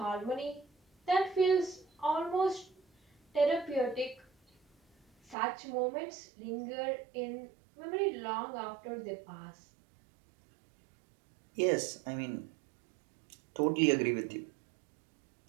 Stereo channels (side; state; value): left; drops out; at 5.4 s